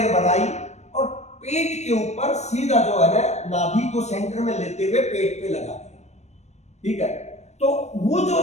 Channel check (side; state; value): right; late; 0.32 ms